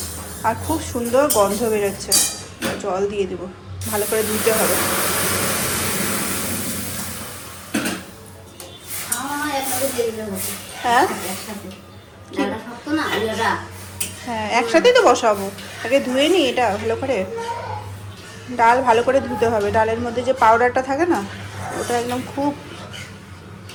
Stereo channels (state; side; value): identical; both; correlation 1.00